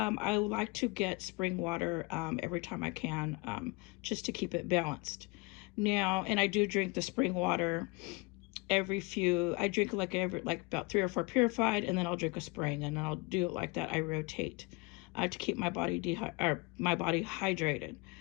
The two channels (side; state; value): right; quieter; 26.8 dB